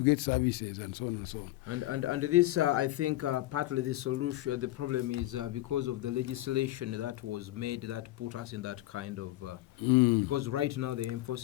get services and so on and so on. And this, I think, partly the solution, the problem is because of the legislation that was made that put us in that kind of, because right now they're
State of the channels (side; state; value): right; quieter; 16.6 dB